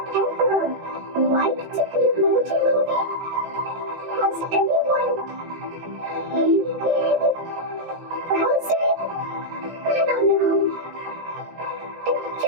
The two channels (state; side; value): late; left; 17 ms